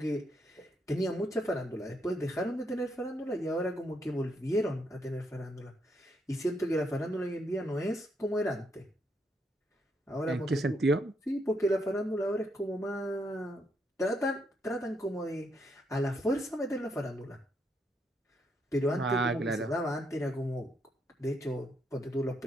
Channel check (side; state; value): both; normal; correlation 0.76